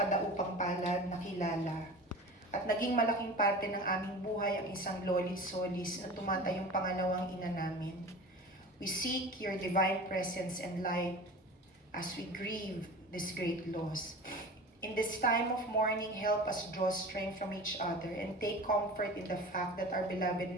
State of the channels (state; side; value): normal; both; correlation 0.36